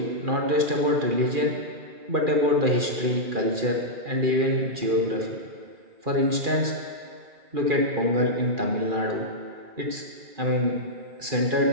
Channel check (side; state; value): left; late; 2.4 ms